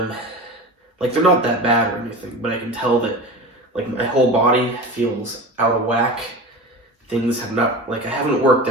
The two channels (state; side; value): normal; both; correlation 0.30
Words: They're not that bad or anything, but I can tell that, my whole body feels out of whack. Things have not, I haven't worked